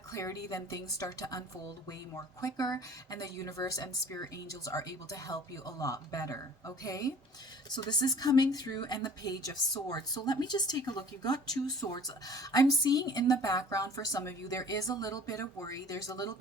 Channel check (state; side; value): normal; both; correlation 0.47